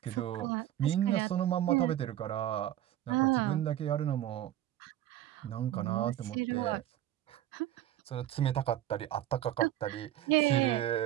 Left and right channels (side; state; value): left; quieter; 12.9 dB